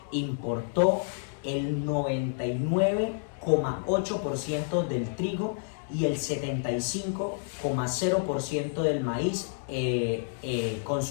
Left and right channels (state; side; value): silent; right; digital silence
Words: importó el 99,8% del trigo y el 75,0% del maíz